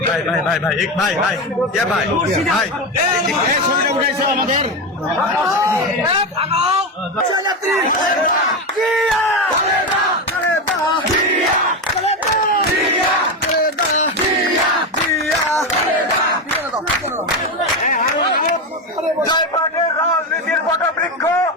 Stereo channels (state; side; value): normal; both; correlation 0.15